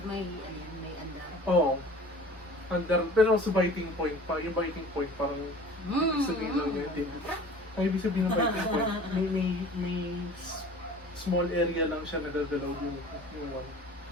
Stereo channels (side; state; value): both; normal; correlation 0.44